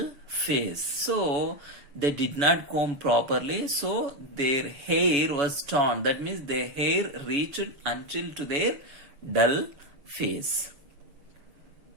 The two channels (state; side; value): late; left; 7.0 ms